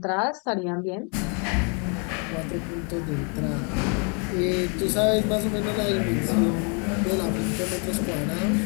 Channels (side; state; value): right; quieter; 37.3 dB